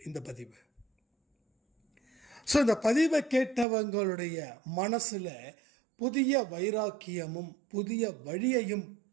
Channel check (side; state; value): left; drops out; at 3.7 s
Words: இந்த பதிவு. ஸோ இந்த பதிவை கேட்டவங்களுடைய மனசில் புதிய வைராக்கியமும் புதிய வழியையும்